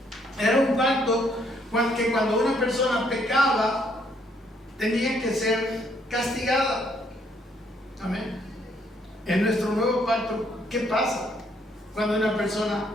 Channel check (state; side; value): normal; both; correlation 0.69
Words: Era un pacto que cuando una persona pecaba, tenía que ser castigada. Amén. En nuestro nuevo pacto, ¿qué pasa cuando una persona